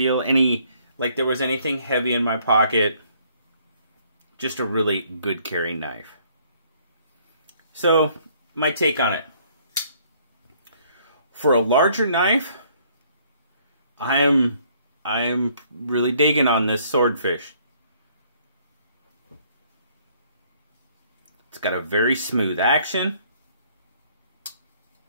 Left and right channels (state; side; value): inverted; both; correlation -0.63